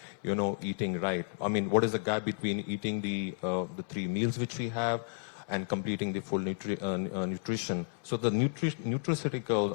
eating right. I mean, what is the gap between eating the 3 meals which we have and completing the full nutrition? So the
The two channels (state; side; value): silent; right; digital silence